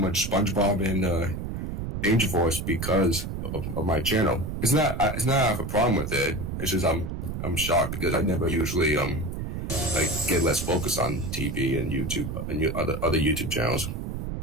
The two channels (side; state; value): right; noise; rumble, 5 dB below the sound